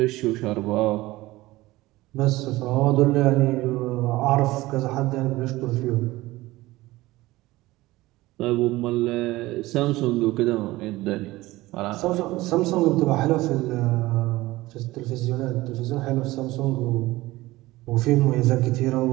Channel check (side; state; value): left; quieter; 18.7 dB